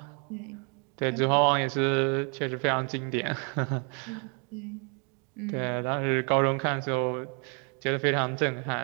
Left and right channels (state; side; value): quieter; left; 38.2 dB